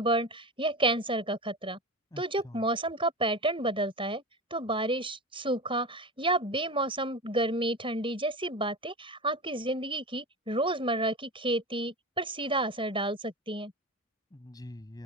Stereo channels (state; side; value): normal; both; correlation 0.25